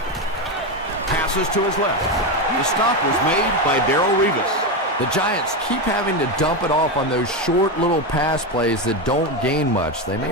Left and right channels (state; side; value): normal; both; correlation 0.12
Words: passes to his left. The stop was made by Darrelle Revis. The Giants keep having to dump it off on those short little pass plays that don't gain much. They